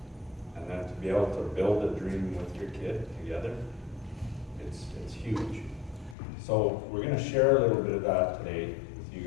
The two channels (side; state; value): right; drops out; at 6.2 s